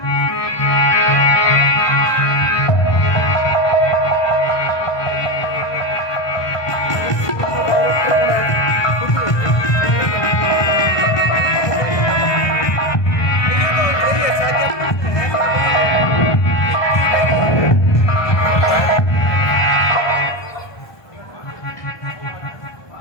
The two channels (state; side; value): late; right; 1.2 ms